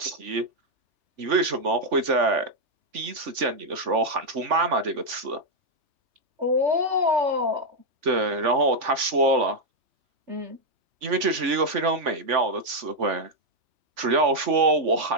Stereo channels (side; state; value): left; late; 3.5 ms